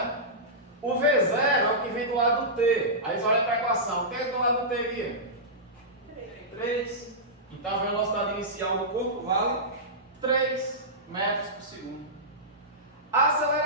O V0 é o que vem do lado do T. Aí você olha para a equação. O que é do lado do T aqui? 3. Então a velocidade inicial do corpo vale 3 metros por segundo. A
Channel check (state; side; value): normal; both; correlation -0.15